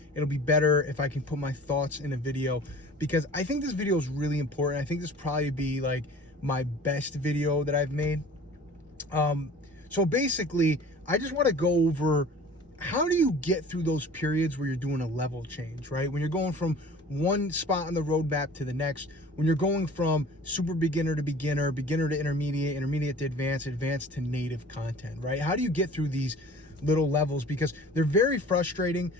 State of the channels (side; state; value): both; normal; correlation 0.44